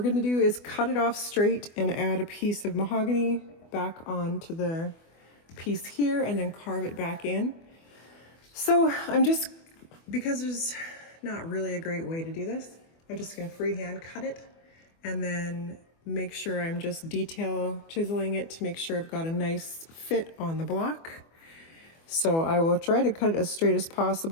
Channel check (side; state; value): right; late; 24 ms